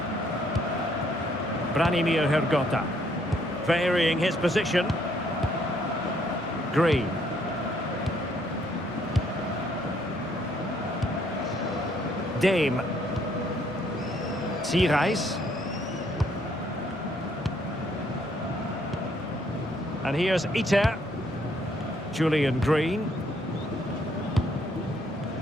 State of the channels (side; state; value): both; normal; correlation 0.68